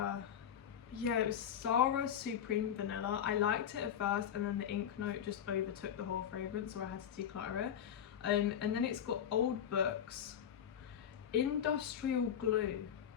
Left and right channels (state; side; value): quieter; right; 9.1 dB